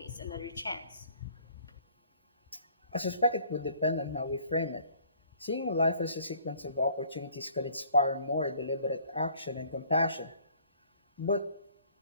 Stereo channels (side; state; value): both; inverted; correlation -0.56